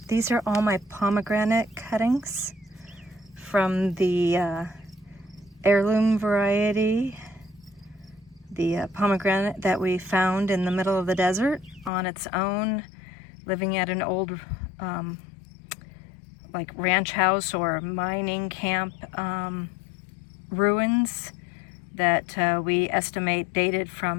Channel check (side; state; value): right; drops out; at 11.9 s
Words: These are all my pomegranate cuttings from the heirloom variety, the pomegranate that we found in the middle of the desert on its own, living at an old like ranch house or mining camp ruins that we estimate dated